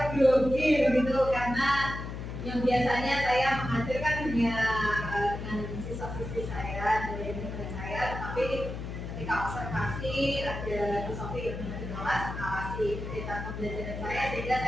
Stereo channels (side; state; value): left; noise; hum, 7 dB below the sound